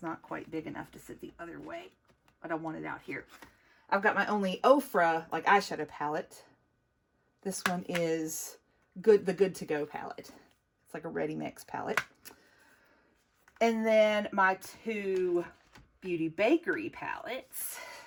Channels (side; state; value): both; identical; correlation 1.00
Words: not quite big enough to sit the other way, but I want it out here. I've got my only Ofra like eyeshadow palette. This one is the Good to Go palette. It's like a ready mix palette. And then my 2 Beauty Bakery palettes.